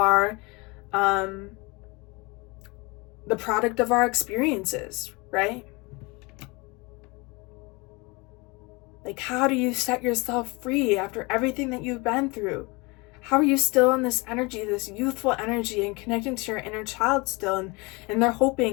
the product of our experiences, right? Like, how do you set yourself free after everything that you've been through? How are you still in this energy, this youthful energy, and connecting to your inner child still? And they're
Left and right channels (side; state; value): right; quieter; 26.4 dB